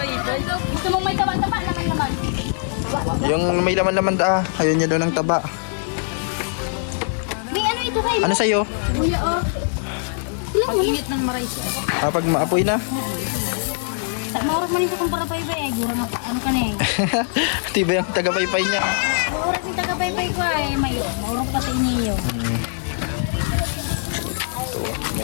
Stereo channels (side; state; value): right; silent; digital silence